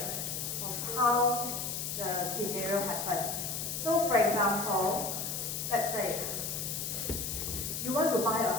of how the scenario happened. So for example, let's say you want to buy a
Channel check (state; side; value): noise; left; hiss, 3 dB below the sound